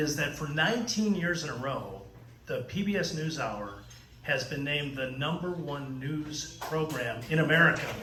that for 19 years in a row, the PBS NewsHour has been named the #1 news program in America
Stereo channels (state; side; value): identical; both; correlation 1.00